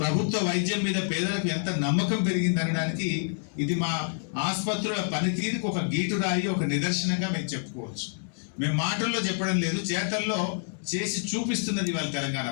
వైద్యం మీద పేదలకు ఎంత నమ్మకం పెరిగింది అనడానికి ఇది మా ఆసుపత్రుల పనితీరుకు ఒక గీటురాయి, ఒక నిదర్శనంగా మేము చెప్పుకోవచ్చు. మేము మాటల్లో చెప్పడం లేదు, చేతల్లో చేసి చూపిస్తున్నది ఇవాళ తెలంగాణ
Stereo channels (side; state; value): right; silent; digital silence